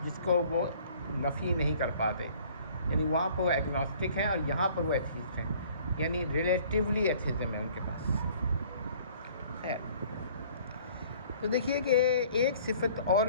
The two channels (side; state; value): both; inverted; correlation -0.54